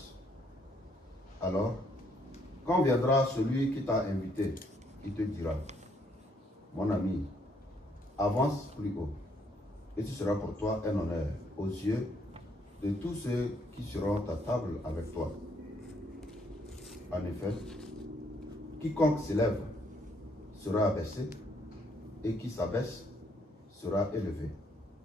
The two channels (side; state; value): both; normal; correlation 0.70